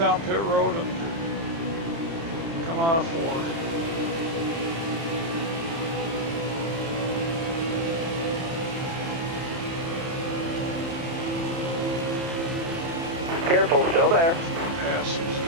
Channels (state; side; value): late; left; 30 ms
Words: pit road and come out of 4. Careful, still there. Pass these